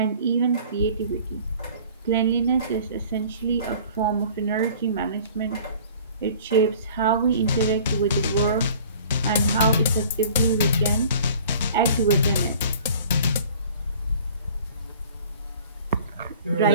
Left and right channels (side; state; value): both; inverted; correlation -0.48